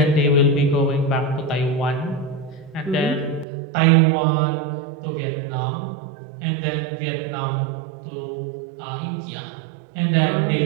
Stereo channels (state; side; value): drops out; left; at 3.5 s